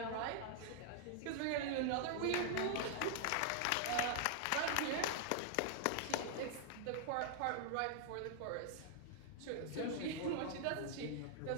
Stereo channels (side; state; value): both; different; correlation 0.00